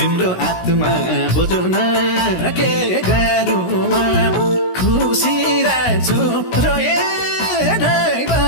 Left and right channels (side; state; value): right; late; 16 ms